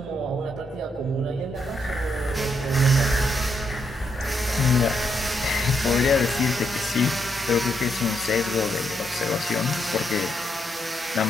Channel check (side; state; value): both; normal; correlation 0.78